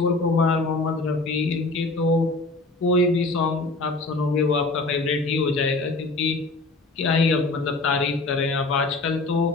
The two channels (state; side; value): quieter; right; 3.3 dB